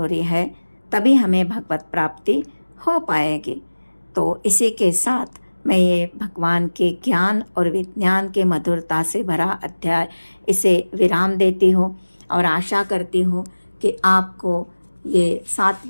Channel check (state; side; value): inverted; both; correlation -1.00